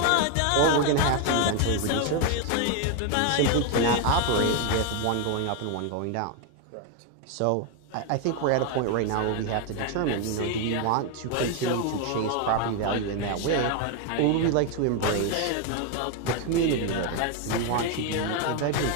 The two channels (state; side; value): different; both; correlation 0.01